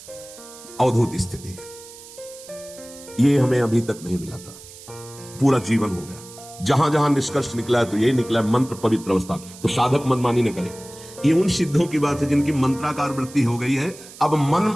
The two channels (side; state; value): right; noise; hiss, 18 dB below the sound